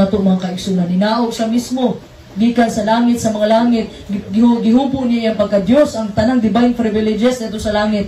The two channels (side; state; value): both; identical; correlation 1.00